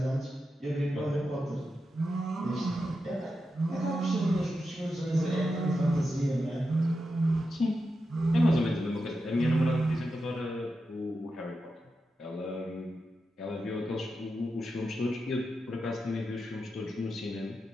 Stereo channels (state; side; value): normal; both; correlation 0.89